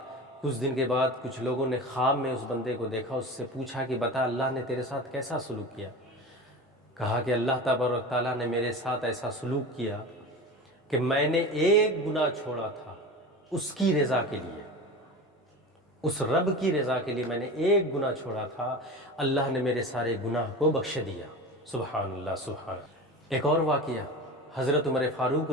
کچھ دن کے بعد کچھ لوگوں نے خواب میں اس بندے کو دیکھا، اس سے پوچھا کہ بتا اللہ نے تیرے ساتھ کیسا سلوک کیا؟ کہا کہ اللہ تبارک تعالیٰ نے میرے ساتھ ایسا سلوک کیا کہ میں نے ایک گناہ چھوڑا تھا اس کی رضا کے لیے، اس رب کی رضا کے لیے میں نے ایک گناہ چھوڑا تھا، اللہ نے میرے سارے گناہ کو بخش دیا۔ سبحان اللہ سبحان اللہ۔ ایک اور واقعہ، حضرت عمر فاروق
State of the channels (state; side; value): normal; both; correlation 0.30